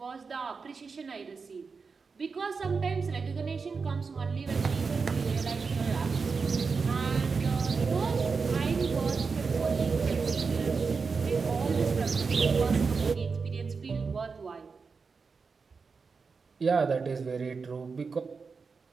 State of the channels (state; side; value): quieter; left; 4.9 dB